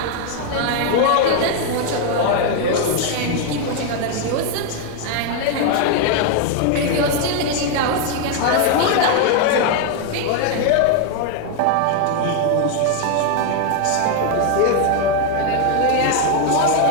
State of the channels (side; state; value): both; different; correlation 0.00